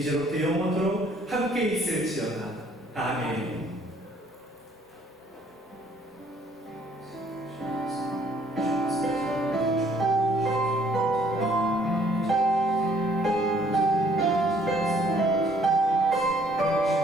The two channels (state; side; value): normal; both; correlation 0.63